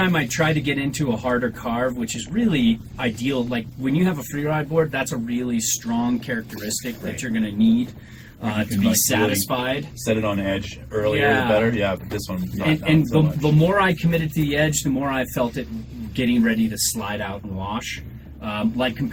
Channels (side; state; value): both; identical; correlation 1.00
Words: I try to get into a harder carve, which is really ideal, like when you have a free ride board, that's a really strong characteristic that you're going to need to be satisfied. Really set it on edge earlier, the better. Yeah, but this one, not so much. The more I committed to the edge, the more I felt it getting ready to slide out and wash. Like